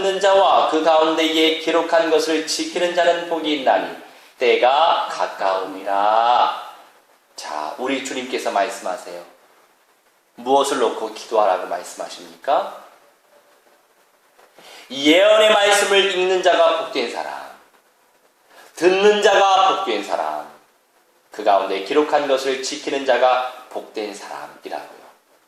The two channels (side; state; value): both; identical; correlation 1.00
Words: 자와 그 가운데에 기록한 것을 지키는 자는 복이 있나니 때가 가까우니라. 자, 우리 주님께서 말씀하세요. 무엇을 놓고 기도하라고 말씀하십니까? 예언의 말씀을 읽는 자가 복된 사람, 듣는 자가 복된 사람, 그 가운데 기록한 것을 지키는 자가 복된 사람이라고요.